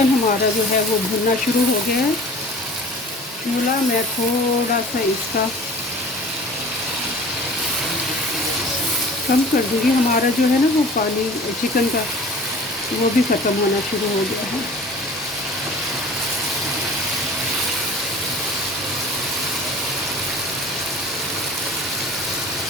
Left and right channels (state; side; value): normal; both; correlation 0.43